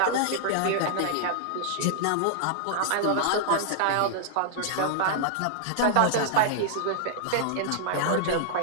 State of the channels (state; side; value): different; both; correlation -0.01